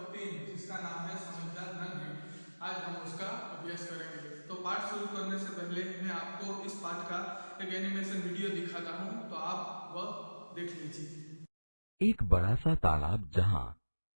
3 जिसका नाम है समझदार नन्हे, आज हम उसका अभ्यास करेंगे। तो पाठ शुरू करने से पहले मैं आपको इस पाठ का एक एनिमेशन वीडियो दिखाता हूं, तो आप वह देख लीजिए। एक बड़ा सा तालाब जहाँ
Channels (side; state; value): both; inverted; correlation -1.00